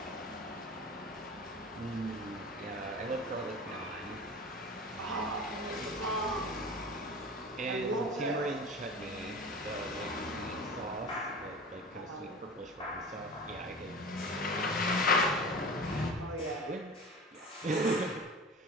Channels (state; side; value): normal; both; correlation 0.35